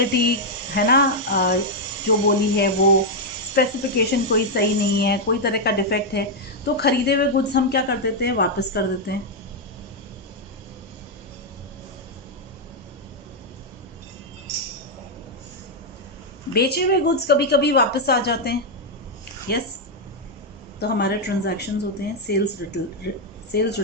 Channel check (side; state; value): both; normal; correlation -0.01